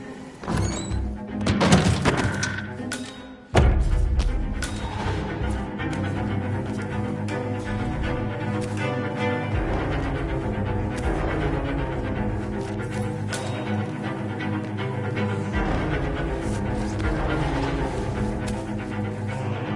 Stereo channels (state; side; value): identical; both; correlation 1.00